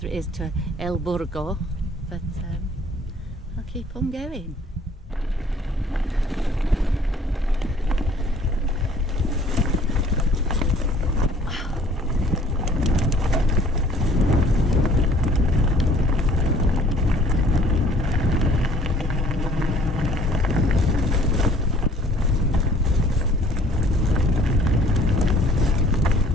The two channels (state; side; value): normal; both; correlation 0.55